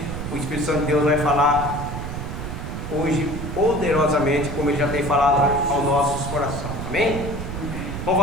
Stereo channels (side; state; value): right; noise; rumble, 6 dB below the sound